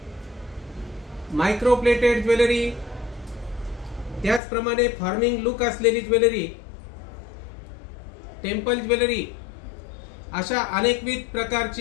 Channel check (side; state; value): right; drops out; at 4.4 s